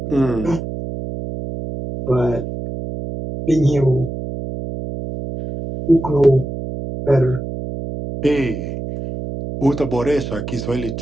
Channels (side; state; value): right; noise; hum, 7 dB below the sound